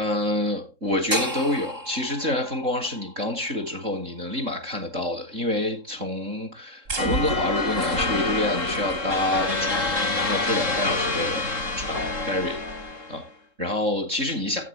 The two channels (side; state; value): left; late; 3.7 ms